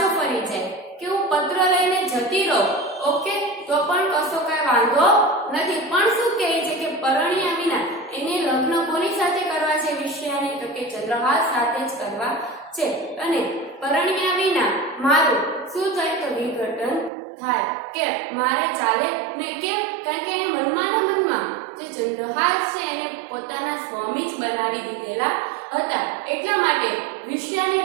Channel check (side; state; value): left; drops out; at 17.1 s